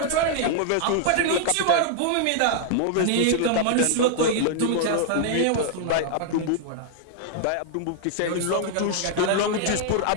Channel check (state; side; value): different; both; correlation -0.01